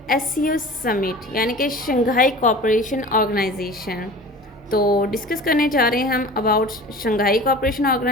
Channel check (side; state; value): both; normal; correlation 0.40